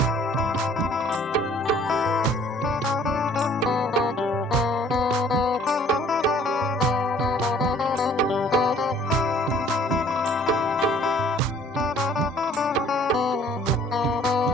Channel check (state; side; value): normal; both; correlation 0.55